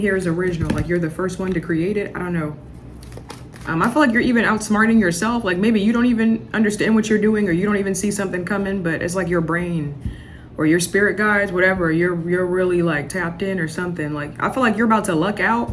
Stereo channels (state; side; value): identical; both; correlation 1.00